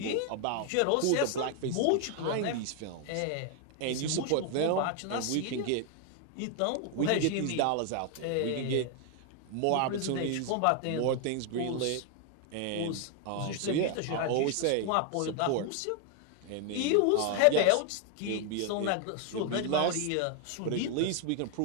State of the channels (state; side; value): different; both; correlation 0.00